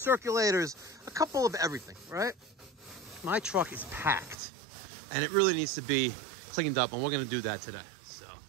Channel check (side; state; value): left; drops out; at 4.4 s